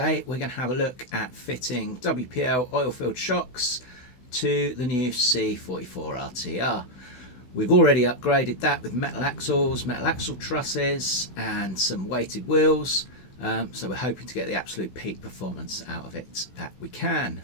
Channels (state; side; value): late; right; 16 ms